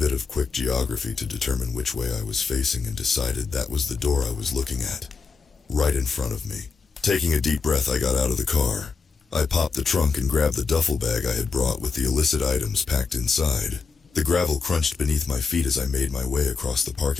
of quick geography to determine which way I was facing and decided that was the door I was looking at, right in front of me. Taking a deep breath, I got out of the car. I popped the trunk and grabbed the duffel bag I had brought with the illicit items packed inside. The gravel crunched beneath my feet as I made my way across the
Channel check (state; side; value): quieter; right; 4.9 dB